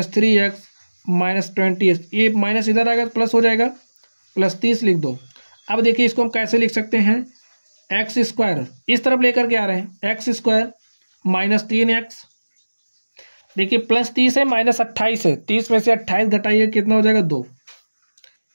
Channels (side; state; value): both; inverted; correlation -1.00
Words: -28। ये माइनस इधर आएगा तो प्लस हो जाएगा, +30 लिख दो। अब देखिए इसको हम कैसे लिख सकते हैं, x² इस तरफ लेकर के आ रहे हैं, x² -3x, देखिए +30 है -28 है, 30 में से 28 घटाइए कितना हो जाएगा, 2